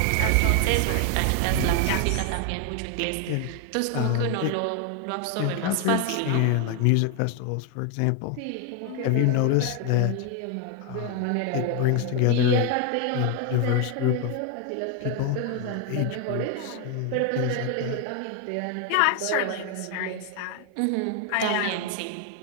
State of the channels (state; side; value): different; both; correlation 0.01